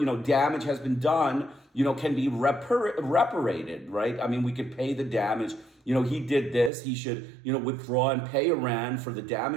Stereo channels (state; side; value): drops out; left; at 6.7 s